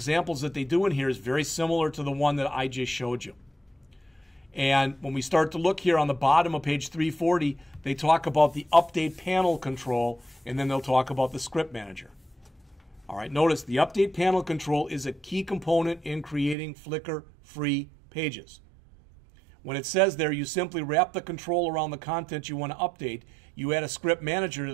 that they do in here is very similar to the one that I just showed you. And when we start to look here on the bottom of page 340, they talk about the update panel control, and then they'll talk about the script manager. All right, notice the update panel control is a key component in creating Flickr-free pages. When it says there, you simply wrap the control around the content you want to update, you add a script manager to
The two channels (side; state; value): left; drops out; at 16.6 s